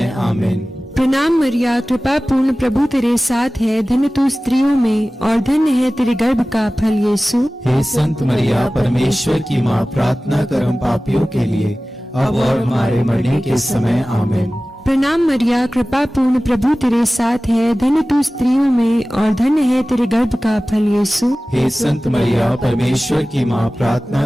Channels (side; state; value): both; normal; correlation 0.97